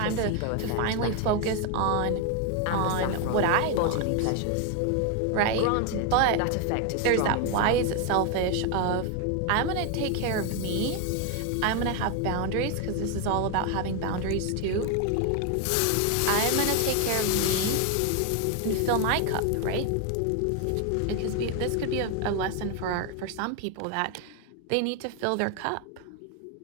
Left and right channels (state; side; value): different; both; correlation 0.01